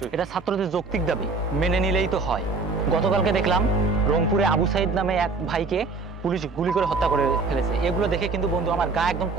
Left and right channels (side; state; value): left; quieter; 4.0 dB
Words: এটা ছাত্রদের যৌক্তিক দাবি, মেনে নিলেই তো হয়। গতকালকে দেখলাম রংপুরে আবু সাইদ নামে এক ভাইকে পুলিশ গুলি করে হত্যা করে ফেলেছে। এগুলো দেখে কিন্তু বন্ধু আমার গা একদম